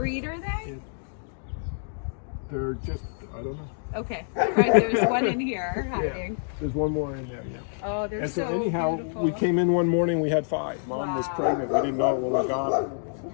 are they? They're just, I don't know. Okay, right, there's one in here hiding. Yeah, there's one more in there, yeah. Oh, they're And so so anyhow, beautiful. we came in one morning, we had 5. Mom was Wow. pregnant. We didn't know it when we got her.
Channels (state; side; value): silent; right; digital silence